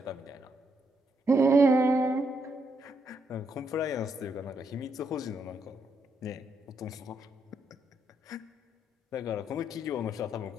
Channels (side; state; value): both; normal; correlation 0.77